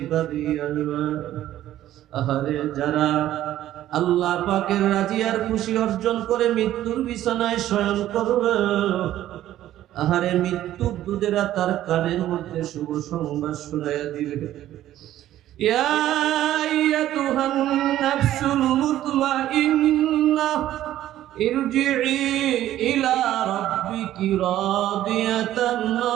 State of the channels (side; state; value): left; quieter; 13.1 dB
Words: আসবে। আহারে, যারা আল্লাহ পাকের রাজি আর খুশি অর্জন করে মৃত্যুর বিছানায় শয়ন করবে, আহারে, মৃত্যুর দূতেরা তার কানের মধ্যে শুভ সংবাদ শোনাইয়া দিবে। ইয়া আইয়াতুহান নাফসুল মুতমাইন্নাহ ইরজিই ইলা রাব্বিকি রাদিয়াতান